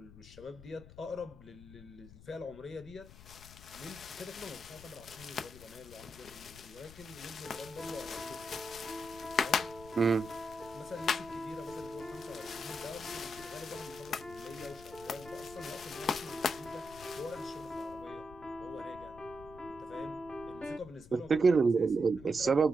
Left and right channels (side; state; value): left; noise; rumble, 17 dB below the sound